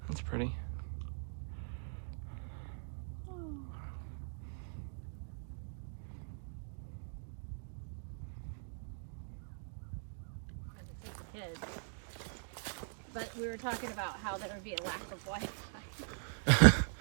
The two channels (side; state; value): left; silent; digital silence